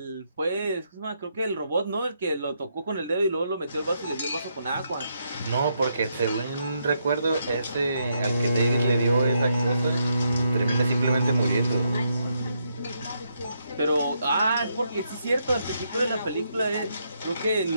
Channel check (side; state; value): both; inverted; correlation -0.78